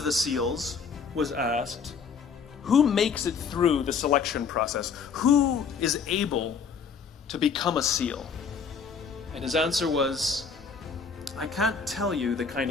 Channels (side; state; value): right; quieter; 5.9 dB